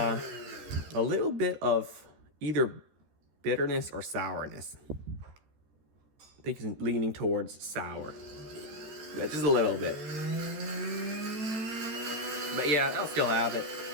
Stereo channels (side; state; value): left; late; 14 ms